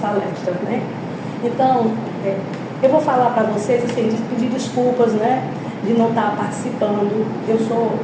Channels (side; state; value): both; identical; correlation 1.00